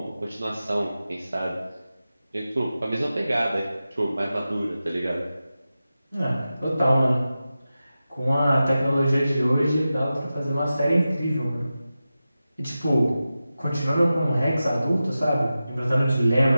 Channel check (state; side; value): inverted; both; correlation -0.94